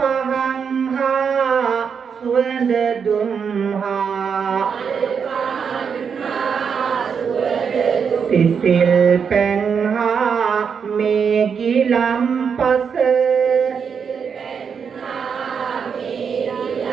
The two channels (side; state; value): left; quieter; 6.6 dB